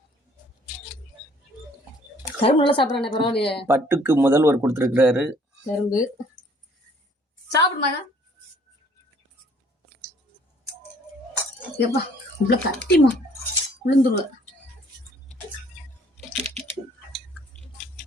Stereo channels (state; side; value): normal; both; correlation 0.59